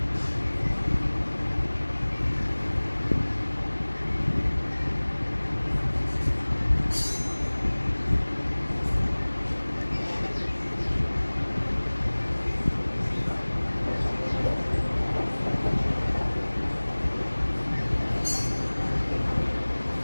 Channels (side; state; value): both; inverted; correlation -1.00